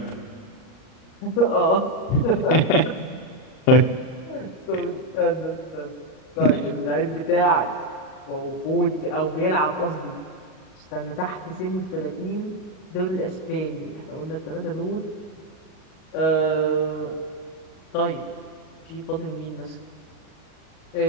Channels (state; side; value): late; right; 38 ms